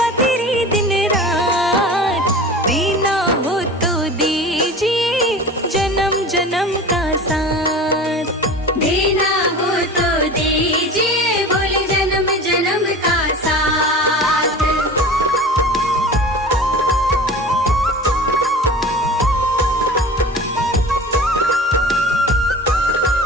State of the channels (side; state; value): both; normal; correlation 0.36